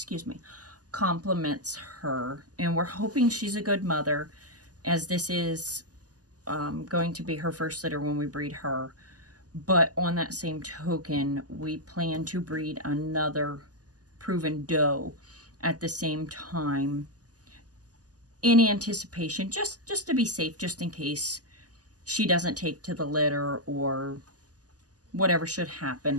compliments her. And we're hoping she's a good mother, as this is going to be her first litter when we breed her. But on that same token, we plan to breed another proven doe at the same time in anticipation, just to be safe, just in case she doesn't take to the litter or whatever should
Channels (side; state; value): left; late; 0.67 ms